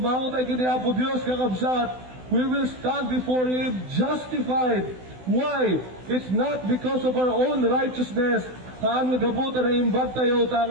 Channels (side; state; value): left; late; 16 ms